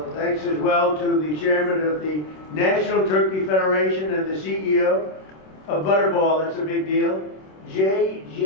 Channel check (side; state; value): right; late; 26 ms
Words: Thanks as well to the chairman of the National Turkey Federation and the CEO of Butterball. That's a big deal. Jay